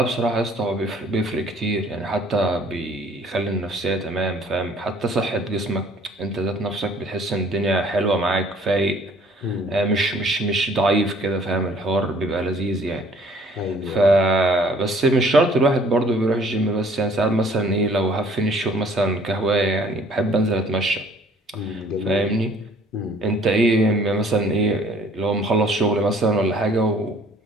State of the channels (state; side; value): normal; both; correlation 0.57